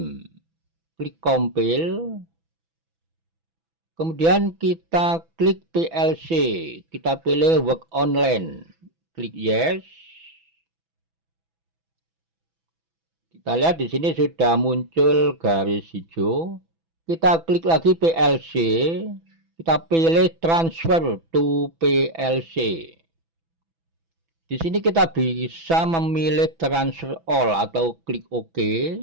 klik compile, kemudian kita klik PLC, kita pilih work online, klik yes. Kita lihat di sini sudah muncul garis hijau. Kita klik lagi PLC, kita pilih transfer to PLC. Di sini kita bisa memilih transfer all atau klik OK,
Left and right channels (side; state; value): left; late; 6.1 ms